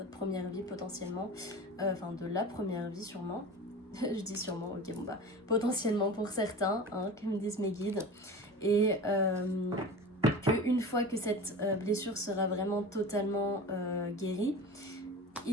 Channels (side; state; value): both; normal; correlation 0.33